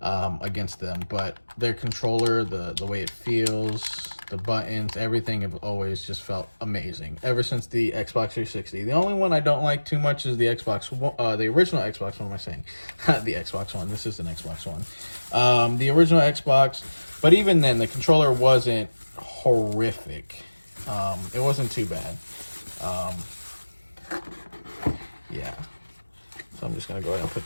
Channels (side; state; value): both; inverted; correlation -1.00